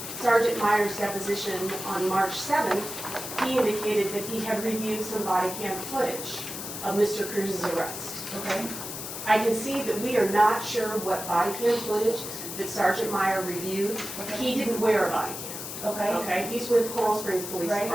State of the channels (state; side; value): noise; left; hiss, 8 dB below the sound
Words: Sergeant Meyer's deposition on March 7th, he indicated that he had reviewed some body cam footage of Mr. Cruz's arrest. Okay. I can see that we are not sure what body cam footage that Sergeant Meyer reviewed. Okay. He didn't wear a body cam. Okay. Okay, he's with Coral Springs Police Right.